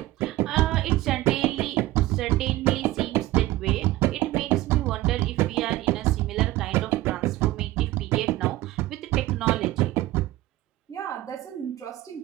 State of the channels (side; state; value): left; quieter; 17.0 dB